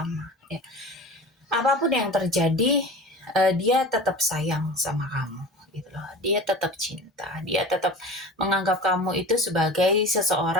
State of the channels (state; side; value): normal; both; correlation 0.35